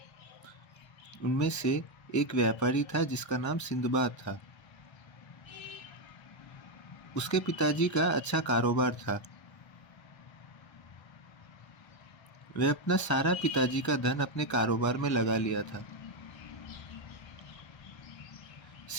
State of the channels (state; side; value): late; right; 1.3 ms